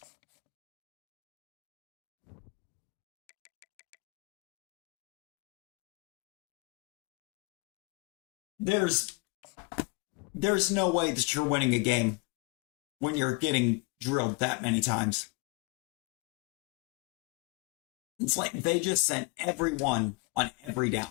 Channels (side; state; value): right; quieter; 28.7 dB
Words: There's no way that you're winning a game when you're getting drilled that many times. It's like they just sent everyone on every